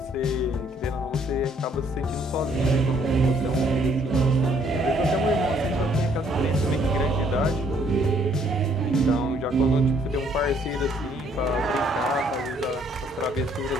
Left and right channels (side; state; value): both; normal; correlation 0.65